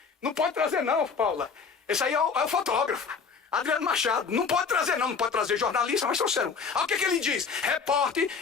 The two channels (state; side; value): quieter; right; 5.5 dB